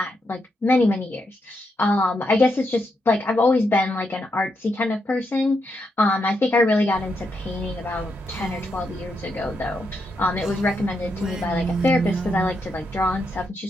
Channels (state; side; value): normal; both; correlation 0.81